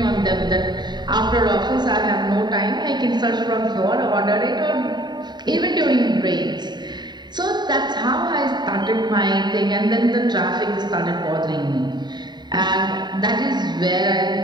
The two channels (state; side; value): late; left; 0.21 ms